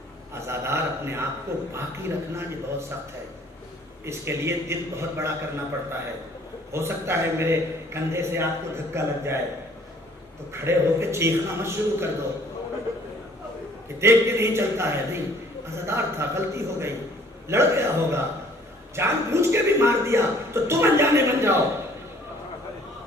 آزادار اپنے آپ کو باقی رکھنا یہ بہت سخت ہے۔ اس کے لیے دل بہت بڑا کرنا پڑتا ہے۔ ہو سکتا ہے میرے کندھے سے آپ کو دھکا لگ جائے تو کھڑے ہو کے چیخنا مت شروع کر دو کہ دیکھ کے نہیں چلتا ہے، نہیں، آزادار تھا، غلطی ہو گئی، لڑ گیا ہوگا، جان بوجھ کے بھی مار دیا تو تم انجانے بن جاؤ۔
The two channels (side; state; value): both; normal; correlation 0.56